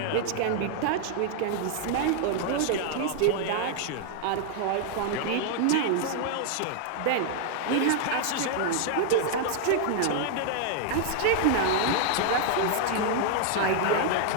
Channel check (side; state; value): both; different; correlation 0.00